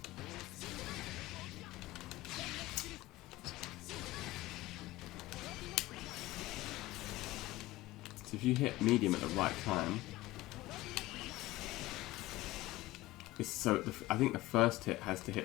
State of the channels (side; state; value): right; quieter; 18.2 dB